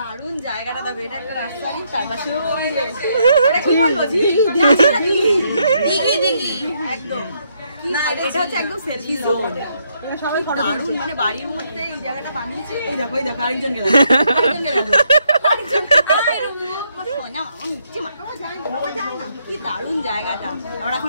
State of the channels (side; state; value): both; inverted; correlation -0.74